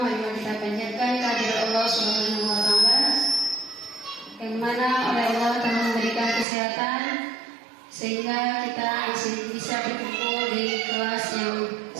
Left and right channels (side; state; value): left; drops out; at 6.5 s